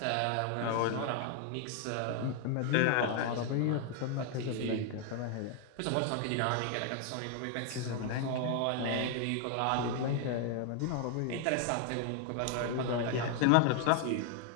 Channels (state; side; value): different; both; correlation 0.00